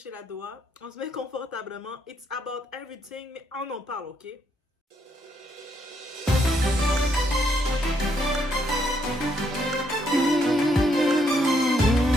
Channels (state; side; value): normal; both; correlation 0.74